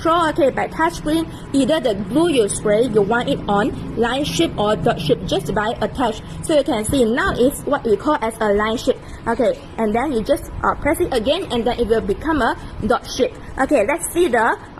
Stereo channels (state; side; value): identical; both; correlation 1.00